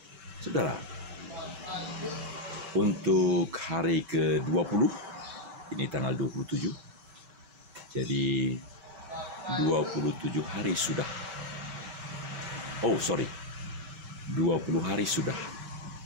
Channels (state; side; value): late; left; 5.2 ms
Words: Saudara, untuk hari ke-20, ini tanggal 27, jadi 27 hari sudah. 20 hari sudah